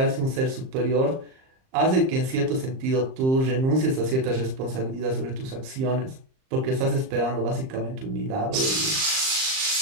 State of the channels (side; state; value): left; late; 38 ms